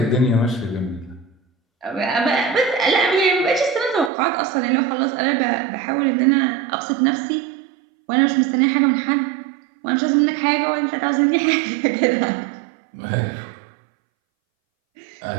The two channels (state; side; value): drops out; left; at 4.1 s